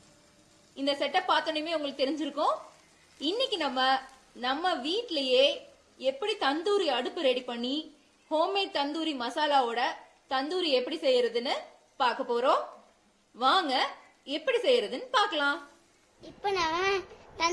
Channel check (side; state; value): both; identical; correlation 1.00